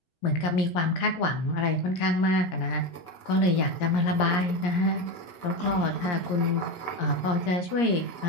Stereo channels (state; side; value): late; right; 17 ms